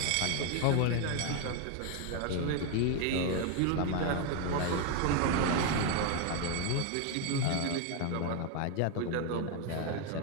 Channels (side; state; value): both; different; correlation 0.01